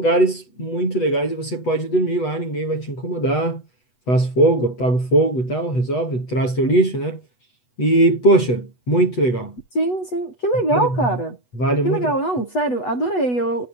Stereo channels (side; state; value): right; late; 8.1 ms